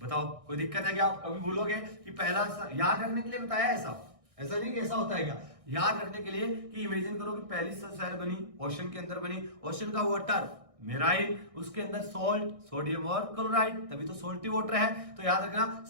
बताओ कोई दिक्कत है क्या? आप कभी भूलोगे कि पहला याद रखने के लिए बताया ऐसा नहीं कि ऐसा होता है क्या? याद रखने के लिए कि इमेजिन करो कि पहली सेल बनी ओशन के अंदर बनी, ओशन का वाटर मेराइन, उसके अंदर सोल्ट, सोडियम और क्लोराइड, तभी तो सोल्टी वाटर है। तो याद रखना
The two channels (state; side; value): late; left; 1.6 ms